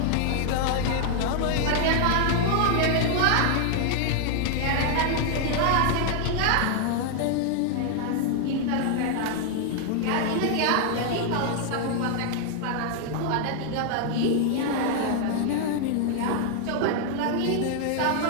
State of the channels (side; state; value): both; different; correlation 0.00